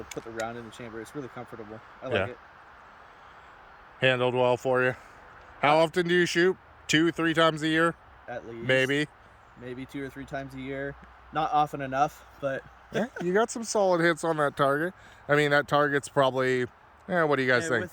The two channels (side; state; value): both; identical; correlation 1.00